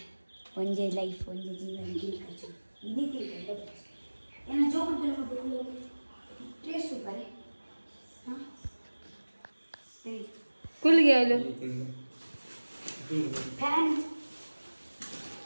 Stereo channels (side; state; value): both; inverted; correlation -1.00